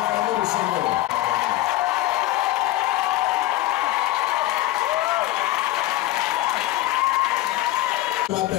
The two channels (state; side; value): quieter; right; 16.4 dB